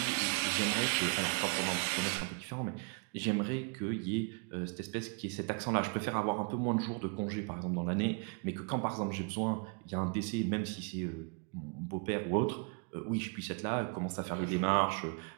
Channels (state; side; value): quieter; left; 35.7 dB